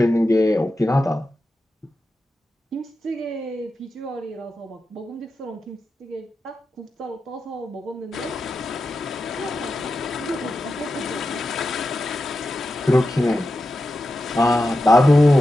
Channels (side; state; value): both; normal; correlation 0.90